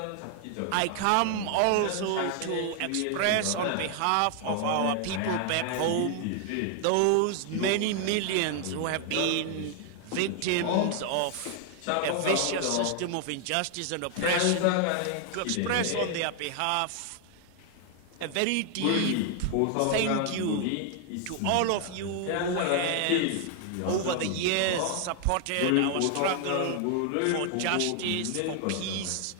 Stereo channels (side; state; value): both; different; correlation 0.00